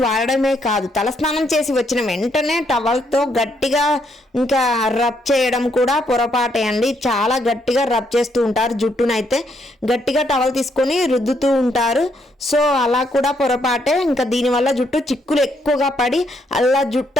వాడడమే కాదు, తలస్నానం చేసి వచ్చిన వెంటనే టవల్తో గట్టిగా ఇంకా రబ్ చేయడం కూడా పొరపాటే అండి. చాలా గట్టిగా రబ్ చేస్తూ ఉంటారు జుట్టునైతే. గట్టిగా టవల్ తీసుకొని రుద్దుతూ ఉంటారు. సో అలా కూడా పొరపాటే. ఇంకా దీనివల్ల జుట్టు చిక్కులు ఎక్కువగా పడి అలా జుట్టు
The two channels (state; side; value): normal; both; correlation 0.74